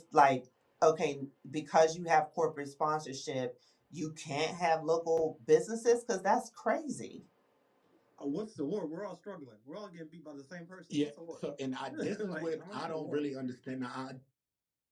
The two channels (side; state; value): both; identical; correlation 1.00